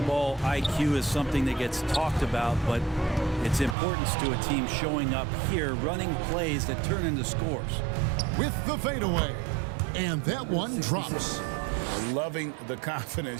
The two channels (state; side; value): drops out; left; at 3.8 s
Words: IQ is something that gets talked about, but its importance to a team showing up here, running plays that turn into scores. With the fadeaway. And that one drops. Loving the